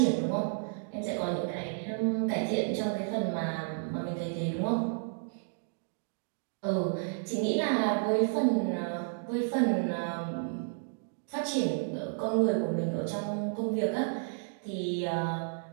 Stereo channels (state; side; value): silent; left; digital silence